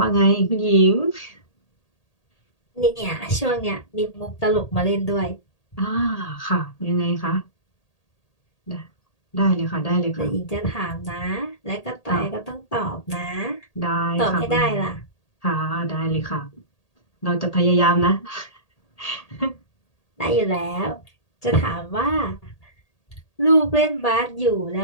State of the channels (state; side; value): late; right; 1.8 ms